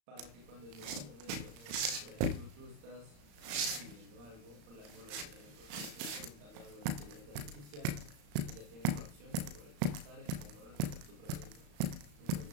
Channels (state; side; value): late; left; 34 ms